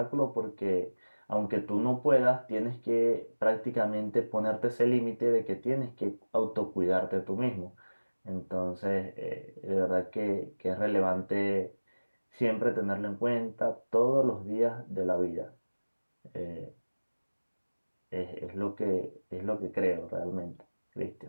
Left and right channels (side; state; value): both; inverted; correlation -1.00